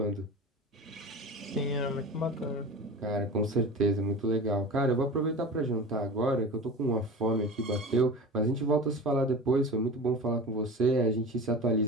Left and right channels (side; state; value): both; normal; correlation 0.32